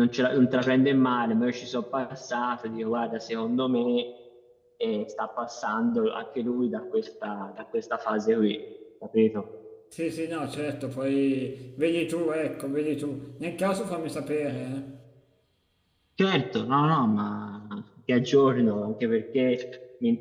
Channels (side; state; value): both; identical; correlation 1.00